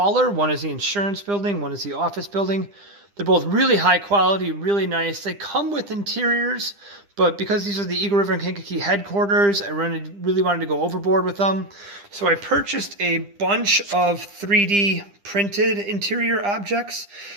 One is the insurance building, one is the office building. They're both really high quality, really nice. They come with interiors, but because these are the Eagle River and Kankakee headquarters, I really wanted to go overboard with them. So I purchased a bunch of 3D printed interior objects.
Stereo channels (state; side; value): late; left; 9.9 ms